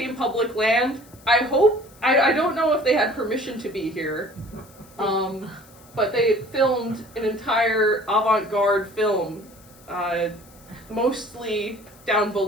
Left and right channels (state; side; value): noise; left; hiss, 25 dB below the sound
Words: public land. I don't know if they had permission to be here, but they filmed an entire avant-garde film, mostly down